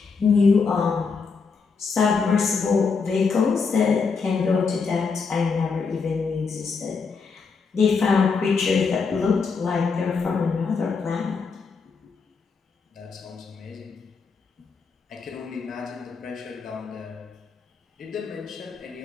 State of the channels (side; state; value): right; quieter; 5.1 dB